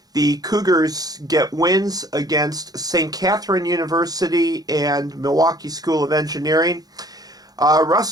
the Cougars get wins against St. Catherine University and Milwaukee School of Engineering.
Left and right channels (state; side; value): late; left; 0.19 ms